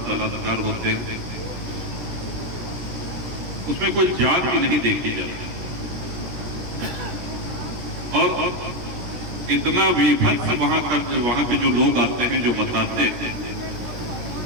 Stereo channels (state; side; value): late; left; 17 ms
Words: बलात्कार होते हैं, उसमें कोई जात भी नहीं देखी जाती। और इतना विभत्स वहां पे जो लोग आते हैं, जो बताते हैं